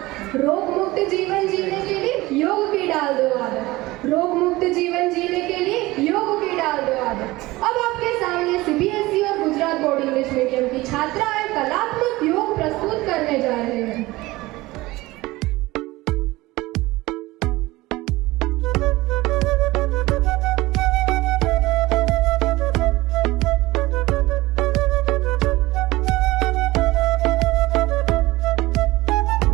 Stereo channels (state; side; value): quieter; left; 19.7 dB